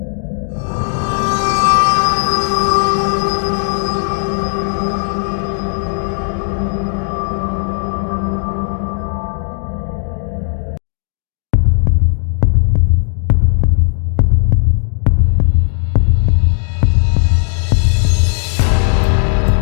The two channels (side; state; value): right; silent; digital silence